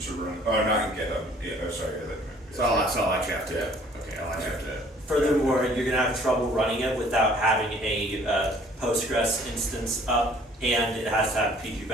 run. Oh, not in GitHub. Yeah, oh, sorry. So I'll actually have to. Yeah. Okay, I'll actually have to. Furthermore, you're going to have trouble running it without having a Postgres instance up, and it has to have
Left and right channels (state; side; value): normal; both; correlation 0.56